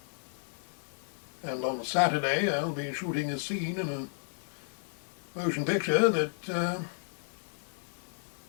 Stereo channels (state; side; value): silent; right; 56 dB below the other